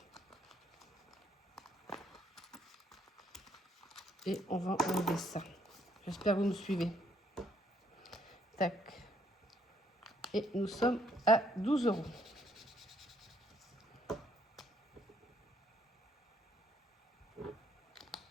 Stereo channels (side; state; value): both; normal; correlation 0.69